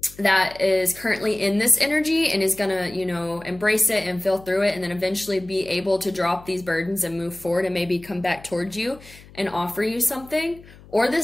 that is currently in this energy and is gonna, you know, embrace it and feel through it, and then eventually be able to drop these burdens and move forward and maybe come back towards you and offer you something. Or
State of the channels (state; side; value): noise; left; hum, 22 dB below the sound